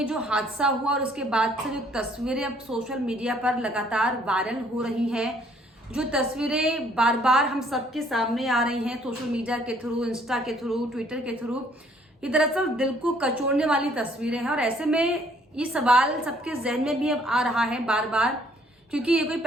जो हादसा हुआ और उसके बाद से जो तस्वीरें अब सोशल मीडिया पर लगातार वायरल हो रही हैं, जो तस्वीरें बार बार हम सबके सामने आ रही हैं सोशल मीडिया के थ्रू, इंस्टा के थ्रू, ट्विटर के थ्रू, ये दरअसल दिल को कचोड़ने वाली तस्वीरें हैं। और ऐसे में ये सवाल सबके जहन में भी अब आ रहा है बार बार, क्योंकि ये कोई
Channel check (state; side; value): normal; both; correlation 0.63